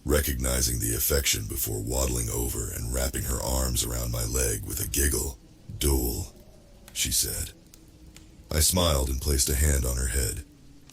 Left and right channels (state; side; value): identical; both; correlation 1.00